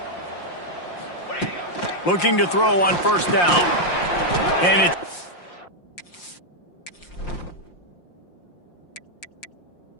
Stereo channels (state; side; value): late; right; 5.7 ms